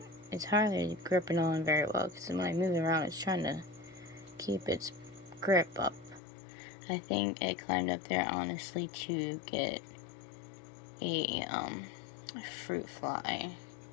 it's hardly gripping on very well, because when I move it around, it's trying to keep its grip up. I think it climbed up there honestly to get a fruit fly,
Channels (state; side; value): drops out; right; at 6.2 s